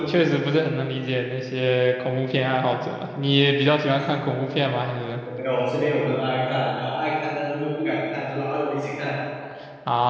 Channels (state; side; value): identical; both; correlation 1.00